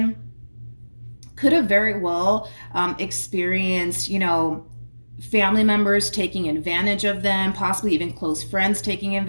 could have very well experienced, you know, family members taking advantage of them, possibly even close friends taking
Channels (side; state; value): both; inverted; correlation -1.00